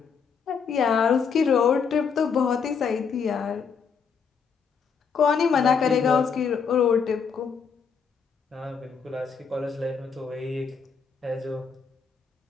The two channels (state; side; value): quieter; right; 6.1 dB